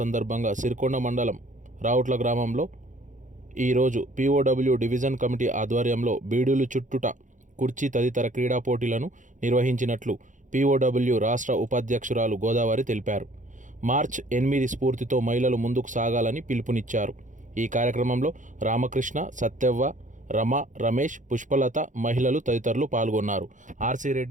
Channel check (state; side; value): late; left; 0.37 ms